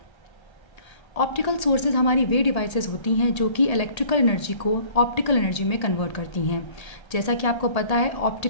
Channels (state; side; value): late; right; 1.8 ms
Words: ऑप्टिकल सोर्सेज हमारी वे डिवाइसेस होती हैं जो कि इलेक्ट्रिकल एनर्जी को ऑप्टिकल एनर्जी में कन्वर्ट करती हैं। जैसा कि आपको पता है,